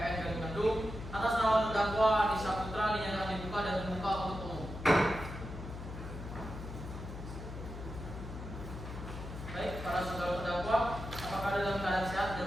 atas nama terdakwa Adi Saputra dinyatakan dibuka dan terbuka untuk umum. Baik, para saudara terdakwa, apakah dalam keadaan sehat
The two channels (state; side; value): noise; left; hum, 9 dB below the sound